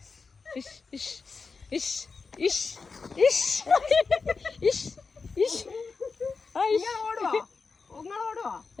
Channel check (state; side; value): quieter; right; 4.7 dB